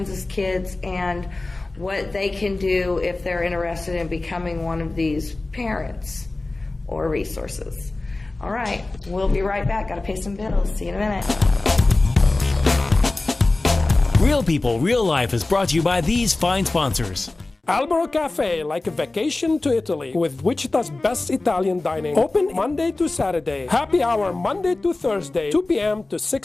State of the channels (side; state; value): right; quieter; 3.1 dB